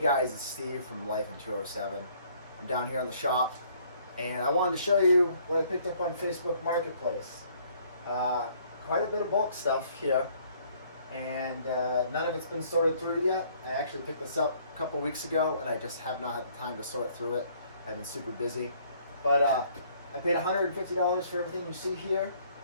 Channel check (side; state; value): both; inverted; correlation -0.62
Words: it's Steve from Life in 207. I'm down here in the shop, and I wanted to show you what I picked up on Facebook Marketplace. Quite a bit of bulk stuff here, and none of it's been sorted through yet. I actually picked this up a couple weeks ago, and I just have not had the time to sort through it. I've been super busy, but I paid $150 for everything you see here.